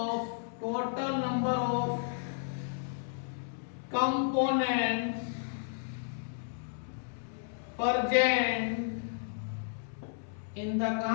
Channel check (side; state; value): right; silent; digital silence